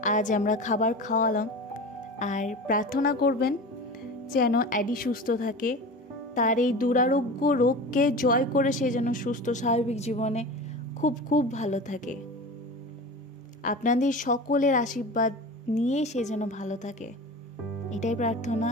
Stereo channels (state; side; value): normal; both; correlation 0.32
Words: আজ আমরা খাবার খাওয়ালাম। আর প্রার্থনা করবেন যেন অ্যাডি সুস্থ থাকে, তার এই দুরারোগ্য রোগকে জয় করে সে যেন সুস্থ স্বাভাবিক জীবনে খুব খুব ভালো থাকে। আপনাদের সকলের আশীর্বাদ নিয়ে সে যেন ভালো থাকে, এটাই প্রার্থনা।